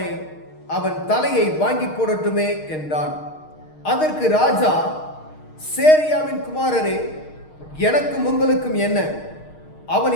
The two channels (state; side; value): late; right; 6.5 ms